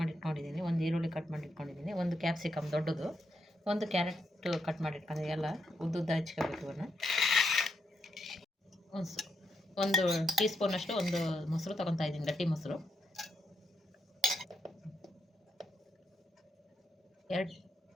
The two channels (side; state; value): both; normal; correlation 0.81